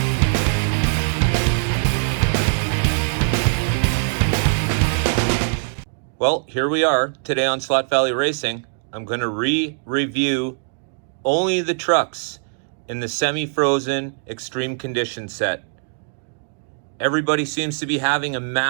Well, here we are today on Slot Valley Racing. I'm going to review only the trucks in the semi-frozen extreme condition set. Everybody seems to be having a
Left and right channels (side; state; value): left; silent; 65 dB below the other